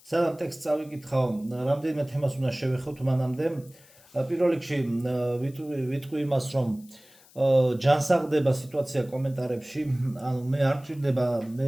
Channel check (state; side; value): noise; left; hiss, 26 dB below the sound